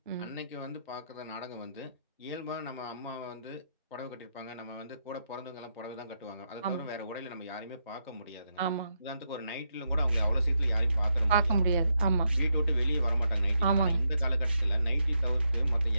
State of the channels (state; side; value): inverted; both; correlation -0.82